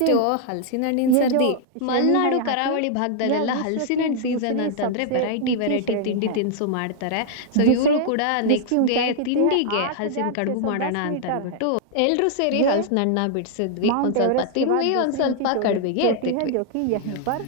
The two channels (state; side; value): different; both; correlation -0.01